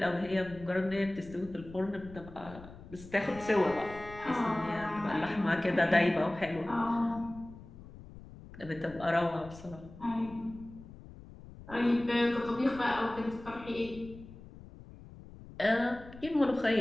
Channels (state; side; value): noise; left; rumble, 17 dB below the sound